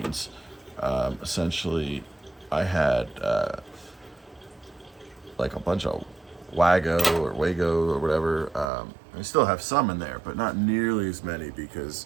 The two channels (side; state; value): left; drops out; at 8.7 s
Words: Essentially, I had like a bunch of Wago or whatever. I still have some in there, but not nearly as many because